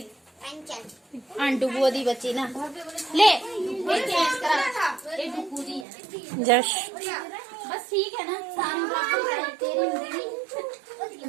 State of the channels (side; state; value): left; drops out; at 5.9 s